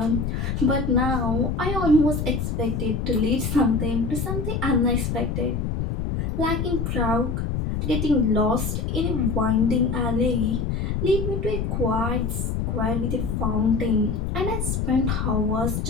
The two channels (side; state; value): left; noise; rumble, 1 dB below the sound